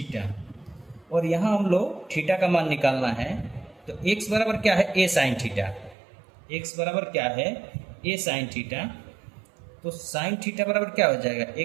और यहाँ हम लोग थीटा का मान निकालना है तो x बराबर क्या है, a साइन थीटा। x बराबर क्या है, a साइन थीटा। तो साइन थीटा बराबर क्या हो जाएगा,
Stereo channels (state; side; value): drops out; left; at 6.0 s